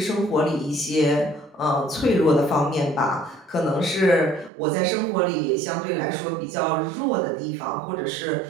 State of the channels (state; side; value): drops out; left; at 4.5 s